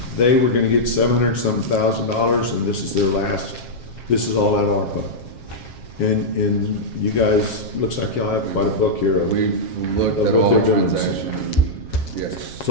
they were gonna get $700,000, and this is their last, this is all at ARPA. And you guys, looks like y'all have quite a book here of, We've looked Of at what all they're the doing. transactions. Yes. It's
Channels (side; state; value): right; late; 7.4 ms